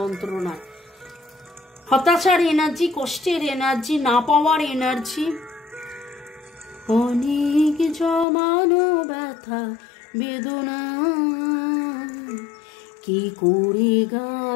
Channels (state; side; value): drops out; right; at 8.2 s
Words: হতাশার এনার্জি, কষ্টের এনার্জি, না পাওয়ার এনার্জি, অনেক জমানো ব্যথা বেদনা, কি করে